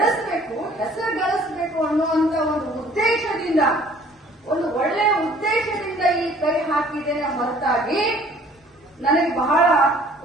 ಹೆಸರು ಗಳಿಸಬೇಕು ಅನ್ನುವಂತ ಒಂದು ಉದ್ದೇಶದಿಂದ, ಒಂದು ಒಳ್ಳೆಯ ಉದ್ದೇಶದಿಂದ ಈ ಕೈ ಹಾಕಿದ್ದೇನೆ ಹೊರತಾಗಿ ನನಗೆ ಬಹಳ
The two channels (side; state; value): both; normal; correlation 0.54